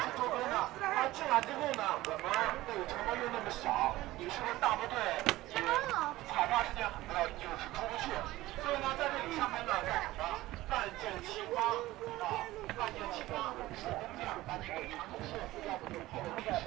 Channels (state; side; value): quieter; left; 17.2 dB